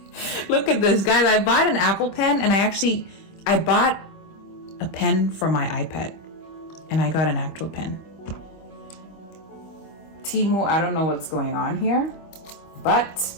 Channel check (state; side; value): late; right; 25 ms